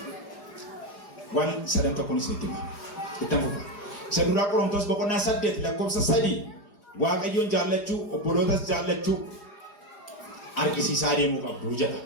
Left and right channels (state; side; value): late; right; 4.9 ms